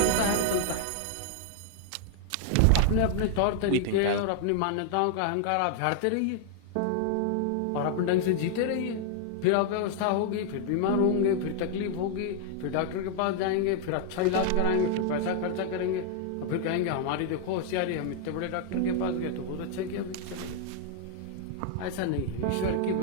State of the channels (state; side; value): different; both; correlation 0.00